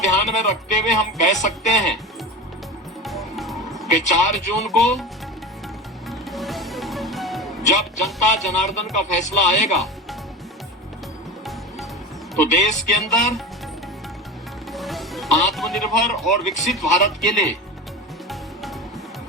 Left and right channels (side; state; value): both; normal; correlation 0.28